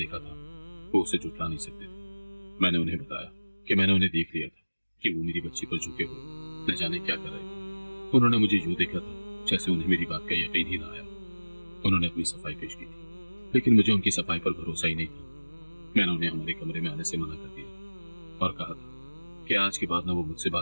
تھا وہ اسے جھٹلا نہیں سکتے تھے۔ میں نے انہیں بتایا کہ میں نے انہیں دیکھ لیا تھا کہ وہ میری بچی پر جھکے ہوئے نہ جانے کیا کر رہے تھے۔ انہوں نے مجھے یوں دیکھا تھا جیسے انہیں میری بات کا یقین ہی نہ آیا۔ انہوں نے اپنی صفائی پیش کی تھی لیکن مجھے ان کی صفائی پر بھروسہ ہی نہیں تھا۔ میں نے انہیں ہمارے کمرے میں آنے سے منع کر دیا اور کہا تھا کہ آج کے بعد نہ وہ مجھ سے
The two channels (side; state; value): both; inverted; correlation -1.00